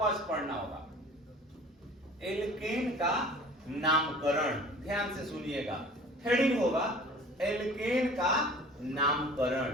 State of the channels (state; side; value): normal; both; correlation 0.44